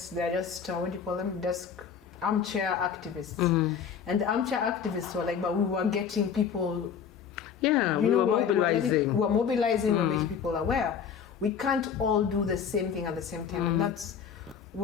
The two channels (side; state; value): right; quieter; 7.3 dB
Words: what do you call them? Desk armchair activists. And the armchair activists were like, but we were getting people. We were mobilizing. We're mobilizing, we're making people aware. We can't all do the same thing at the same time. And that's